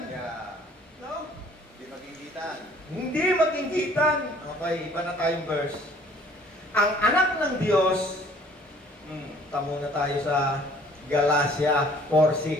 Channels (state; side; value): normal; both; correlation 0.56